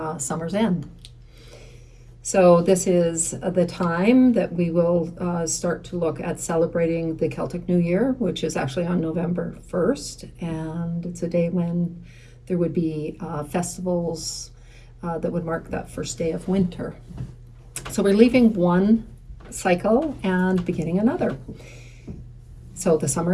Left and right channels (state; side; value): identical; both; correlation 1.00